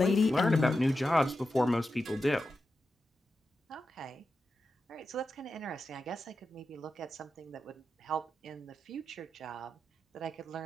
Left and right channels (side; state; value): both; normal; correlation 0.90